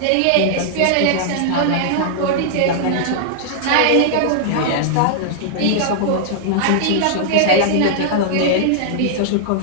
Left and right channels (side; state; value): both; different; correlation -0.01